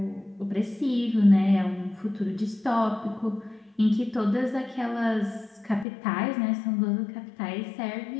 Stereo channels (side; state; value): right; drops out; at 5.9 s